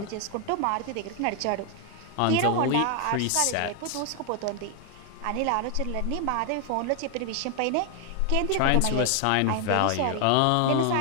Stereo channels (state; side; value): different; both; correlation 0.00